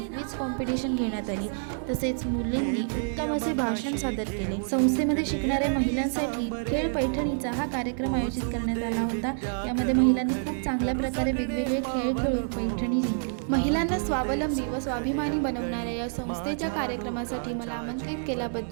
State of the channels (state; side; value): silent; left; digital silence